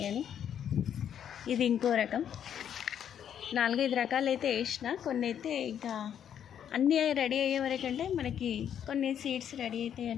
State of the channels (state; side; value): quieter; right; 9.2 dB